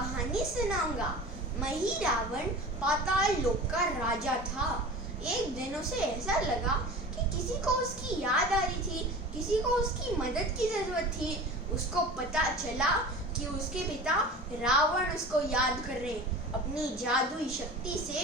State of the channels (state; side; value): normal; both; correlation 0.35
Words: सुनाऊंगा। महिरावण पाताल लोक का राजा था। एक दिन उसे ऐसा लगा कि किसी को उसकी याद आ रही थी, किसी को उसकी मदद की जरूरत थी। उसको पता चला कि उसके पिता रावण उसको याद कर रहे। अपनी जादुई शक्ति से